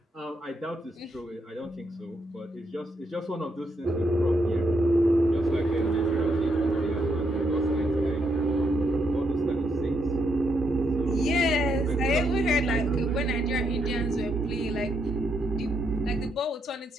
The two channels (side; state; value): both; normal; correlation 0.78